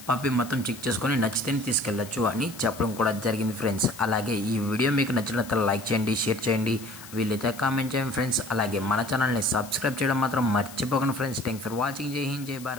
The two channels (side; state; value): left; noise; hiss, 17 dB below the sound